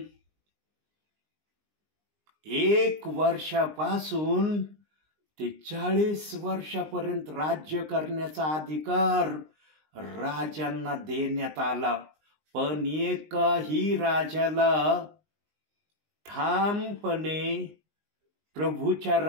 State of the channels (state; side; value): late; left; 19 ms